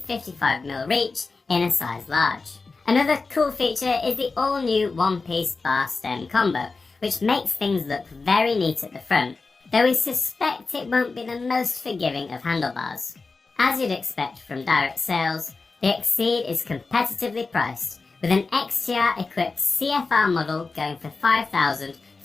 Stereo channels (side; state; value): right; quieter; 4.0 dB